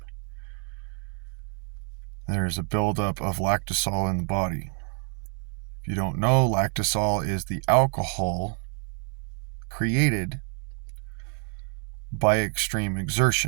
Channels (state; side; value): quieter; left; 39.3 dB